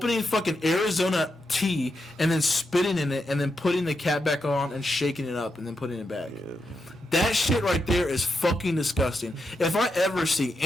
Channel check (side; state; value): both; normal; correlation 0.85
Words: fucking Arizona tea and then spitting in it and then putting the cap back on and shaking it up and then putting it back. Yeah. That shit right there is fucking disgusting. If I ever see